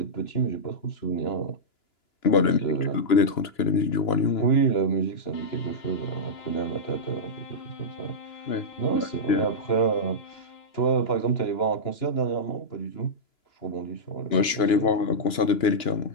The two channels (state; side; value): late; right; 2.9 ms